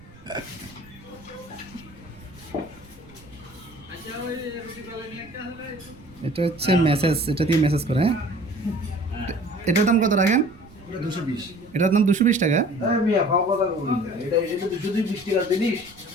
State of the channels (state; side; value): noise; right; rumble, 23 dB below the sound